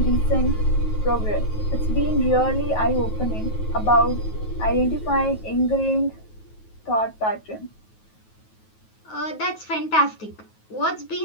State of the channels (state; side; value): late; right; 9.3 ms